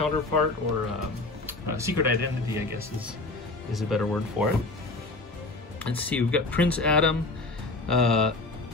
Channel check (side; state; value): right; quieter; 3.2 dB